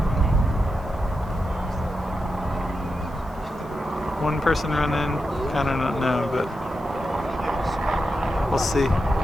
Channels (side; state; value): right; noise; hiss, 30 dB below the sound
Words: One person running, kind of don't know, but we'll see.